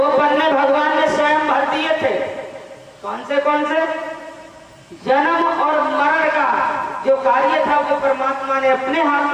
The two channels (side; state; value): both; identical; correlation 1.00